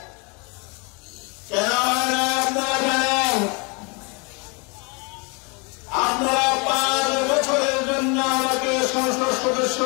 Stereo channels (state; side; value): quieter; right; 31.9 dB